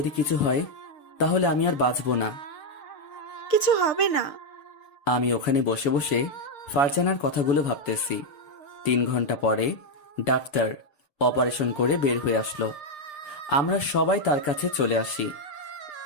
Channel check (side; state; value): right; late; 6.6 ms